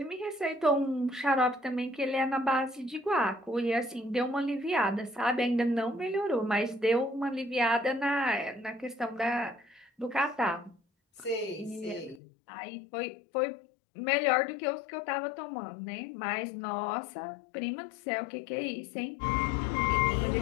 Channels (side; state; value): right; drops out; at 12.2 s